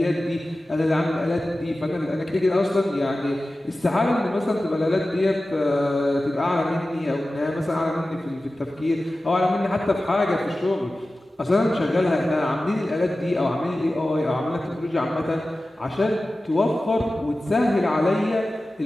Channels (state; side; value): normal; both; correlation 0.95